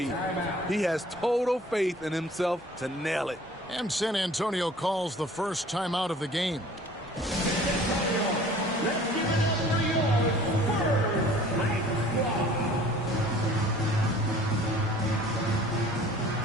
He has total faith in himself to nail it. And San Antonio calls the first timeout of the game.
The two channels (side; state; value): both; normal; correlation 0.50